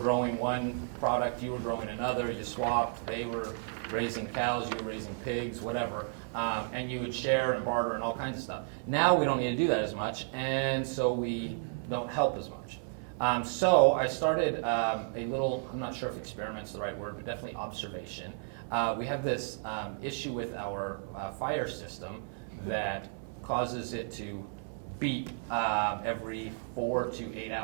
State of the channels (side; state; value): left; silent; 56 dB below the other